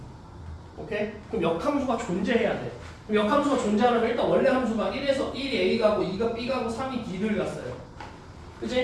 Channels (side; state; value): both; identical; correlation 1.00